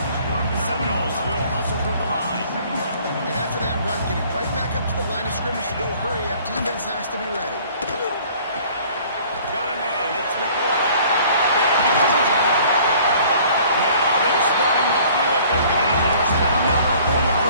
The Seminoles will hustle to the line. And after that run, getting right back up to the line of scrimmage to go hurry up, defense has to be ready. Got a man. It's McLaurin. Now they're starting to feel it. They've got a first down, number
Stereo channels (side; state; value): both; inverted; correlation -0.53